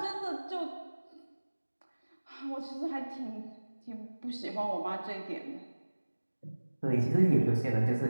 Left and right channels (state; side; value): inverted; both; correlation -1.00